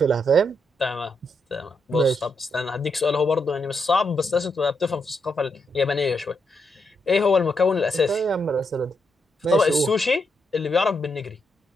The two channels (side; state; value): both; normal; correlation 0.81